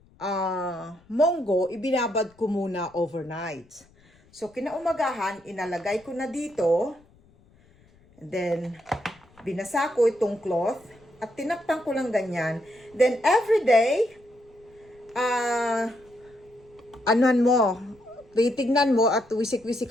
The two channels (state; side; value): noise; left; rumble, 30 dB below the sound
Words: monggo, ibinabad ko muna overnight. So, kinaumagahan, inalagay ko na dito. And then, binasa ko itong cloth. At tinakpan ko lang ganyan. Then, every day, titignan mo at